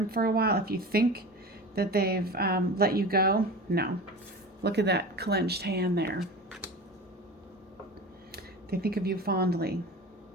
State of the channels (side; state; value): both; normal; correlation 0.32